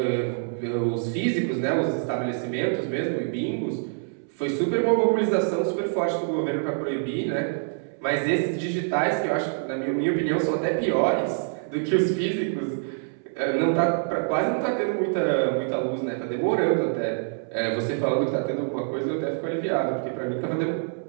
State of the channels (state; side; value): silent; left; 61 dB below the other